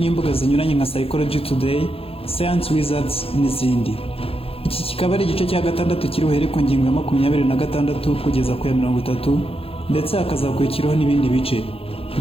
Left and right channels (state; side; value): late; right; 0.27 ms